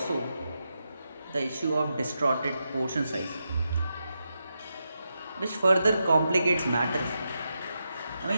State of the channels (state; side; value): inverted; both; correlation -0.86